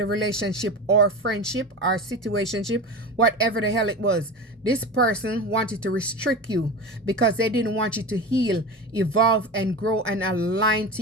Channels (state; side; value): normal; both; correlation 0.28